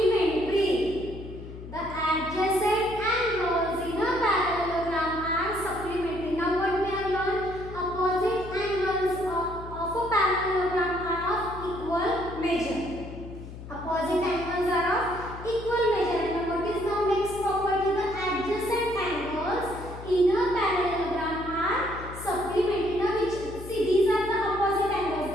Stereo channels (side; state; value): left; noise; hum, 12 dB below the sound